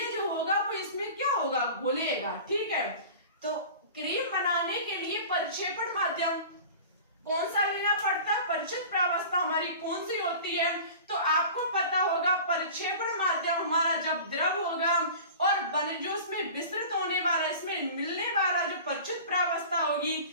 जो होगा वो इसमें क्या होगा? घुलेगा। ठीक है, तो क्रीम बनाने के लिए परिक्षेपण माध्यम कौन सा लेना पड़ता है? परिक्षिप्त प्रावस्था हमारी कौन सी होती है? तो आपको पता होगा परिक्षेपण माध्यम हमारा जब द्रव होगा और जो उसमें विस्तृत होने वाला, इसमें मिलने वाला जो परिक्षिप्त प्रावस्था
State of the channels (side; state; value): both; inverted; correlation -0.39